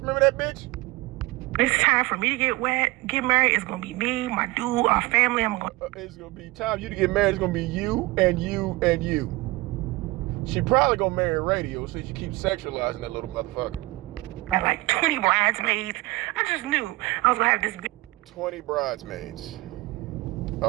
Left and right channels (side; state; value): left; quieter; 21.4 dB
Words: that bitch? It's time for me to get married. It's gonna be me, my dude, our family. It's gonna be time for you to get married. It's gonna be you and you and you. She probably gonna marry radio so she keeps sexualizing that little motherfucker. I had like 20 bridesmaids. I just knew I was gonna have this big 20 bridesmaids.